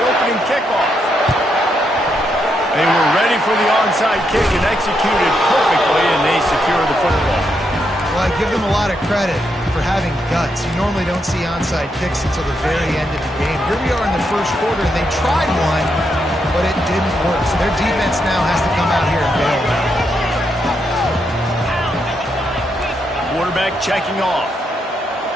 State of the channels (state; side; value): normal; both; correlation 0.80